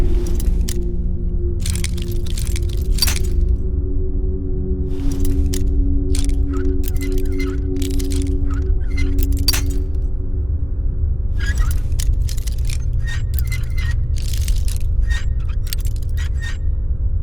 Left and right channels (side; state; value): right; noise; hum, 19 dB below the sound